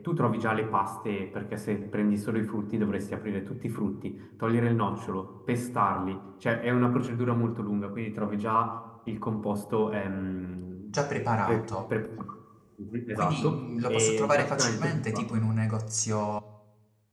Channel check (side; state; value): both; identical; correlation 1.00